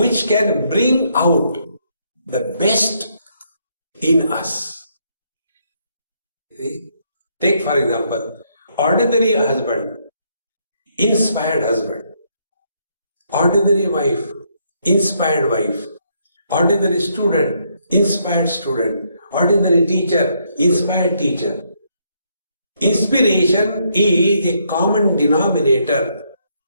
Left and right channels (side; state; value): both; inverted; correlation -0.73